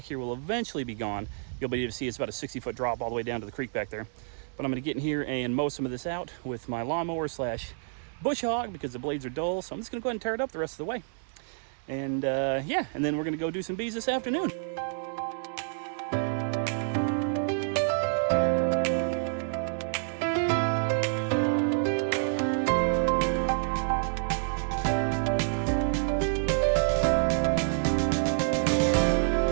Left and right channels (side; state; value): left; silent; digital silence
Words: here will eventually be gone. You'll be able to see it's about a 60-foot drop all the way down to the creek back there. But I'm going to get in here and mow some of this out with my lawnmower slash bush hog because the blades are dull. So I'm just going to go ahead and tear it up the rest of the way. And yeah, and then we're going to go do some bees this afternoon.